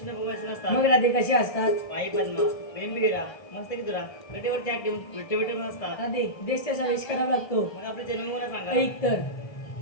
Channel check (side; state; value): right; late; 1.7 ms